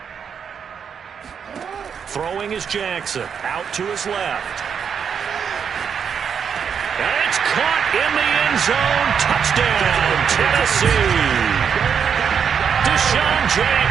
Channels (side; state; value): left; quieter; 7.1 dB